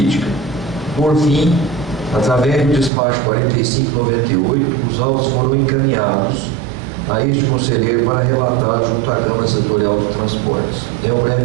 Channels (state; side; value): drops out; left; at 2.9 s